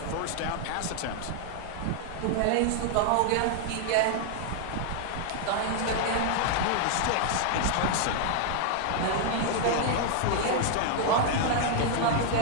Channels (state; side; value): different; both; correlation 0.00